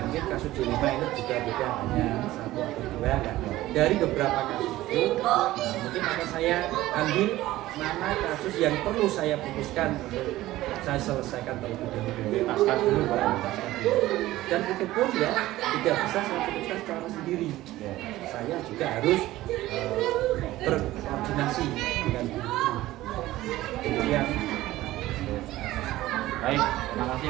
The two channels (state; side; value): quieter; left; 16.3 dB